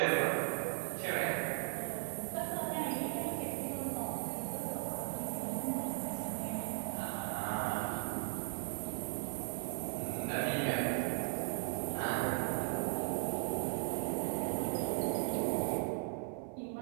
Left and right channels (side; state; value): left; silent; 53 dB below the other